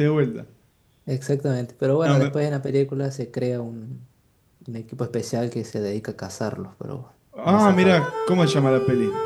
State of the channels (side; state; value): both; identical; correlation 1.00